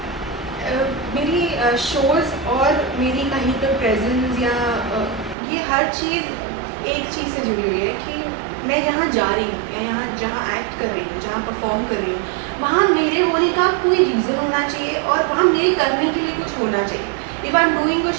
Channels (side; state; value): left; drops out; at 5.4 s